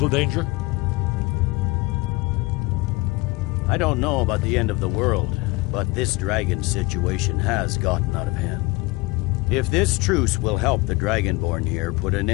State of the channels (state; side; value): quieter; right; 23.4 dB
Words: danger? I don't know about the end of the world, but this dragon situation has gotten out of hand. If this truce will help the Dragonborn here put an